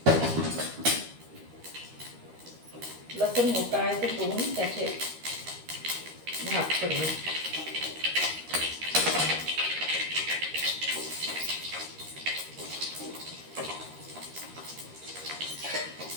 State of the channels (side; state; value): left; late; 13 ms